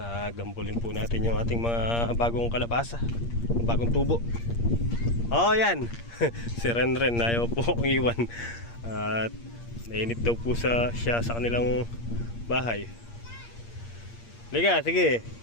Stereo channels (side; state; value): right; late; 8.6 ms